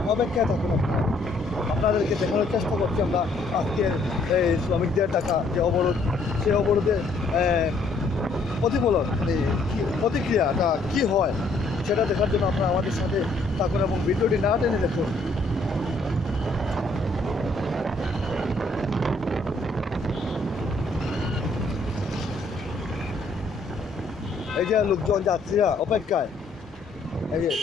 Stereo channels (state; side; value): quieter; right; 3.1 dB